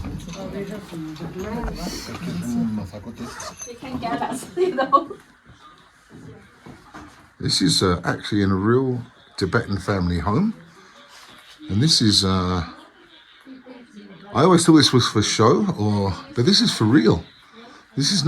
This is actually in a real Tibetan family home, and this is. I always thought this was for show, but this is for real. This is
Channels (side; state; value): both; identical; correlation 1.00